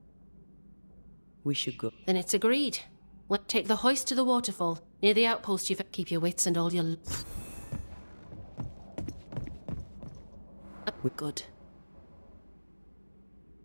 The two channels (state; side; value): inverted; both; correlation -1.00